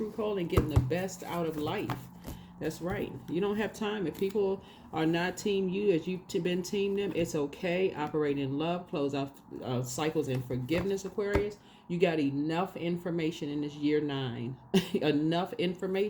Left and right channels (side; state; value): both; identical; correlation 1.00